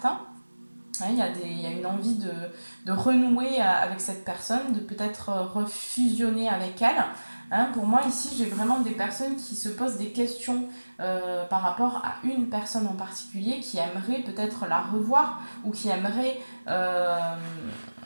Il y a une envie de renouer avec cette personne, de peut-être refusionner avec elle. Pour moi, ici, j'ai vraiment des personnes qui se posent des questions par rapport à une personne en particulier, qui aimerait peut-être la revoir ou qui aimerait...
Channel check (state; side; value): inverted; both; correlation -1.00